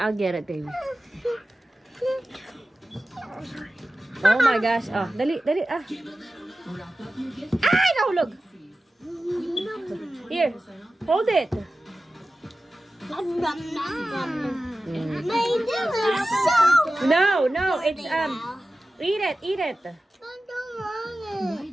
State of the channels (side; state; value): both; normal; correlation 0.95